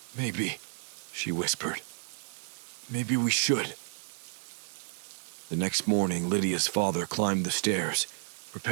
"Maybe," she whispered. "Maybe we should." The next morning, Lydia's father climbed the stairs,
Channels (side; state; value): left; silent; digital silence